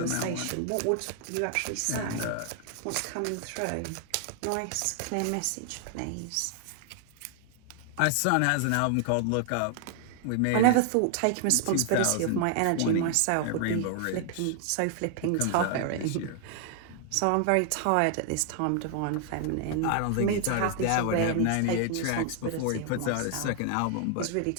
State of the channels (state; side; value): different; both; correlation 0.00